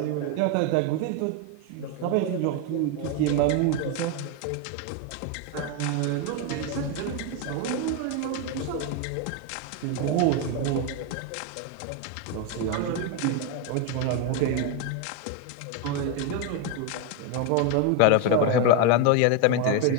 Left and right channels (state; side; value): different; both; correlation 0.02